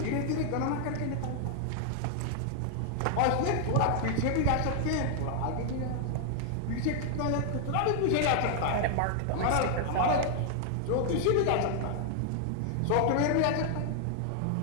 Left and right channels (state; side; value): different; both; correlation 0.00